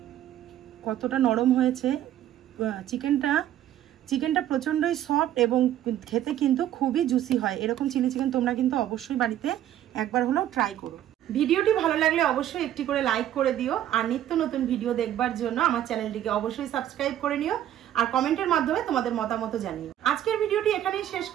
কতটা নরম হয়েছে চিকেনটা প্রচন্ডই সফট এবং খেতে কিন্তু খুবই জুসি হয়। এরকম চিলি চিকেন তোমরা কিন্তু অবশ্যই বাড়িতে একবার হলেও ট্রাই করো। ভিডিওটি ভালো লাগলে অবশ্যই একটি করে লাইক করে দিও। আর নিত্য নতুন ভিডিও দেখবার জন্য আমার চ্যানেলটিকে অবশ্যই সাবস্ক্রাইব করে নিও। আর কমেন্টের মাধ্যমে তোমাদের মতামত জানিও। আজকের ভিডিওটি এখানেই শেষ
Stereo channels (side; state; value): left; quieter; 11.8 dB